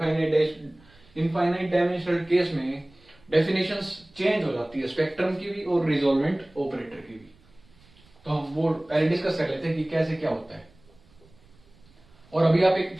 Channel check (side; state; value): right; noise; rumble, 29 dB below the sound